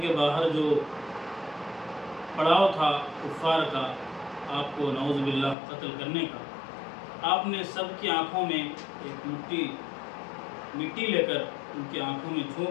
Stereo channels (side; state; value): right; drops out; at 5.6 s